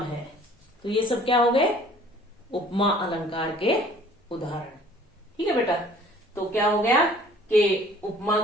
है, तो ये सब क्या हो गए, उपमा अलंकार के उदाहरण। ठीक है बेटा, तो क्या हो गया कि उपमा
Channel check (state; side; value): normal; both; correlation 0.53